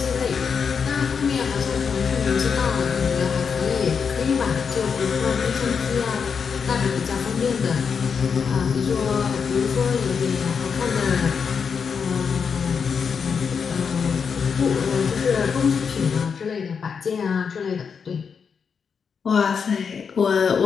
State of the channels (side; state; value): right; quieter; 6.2 dB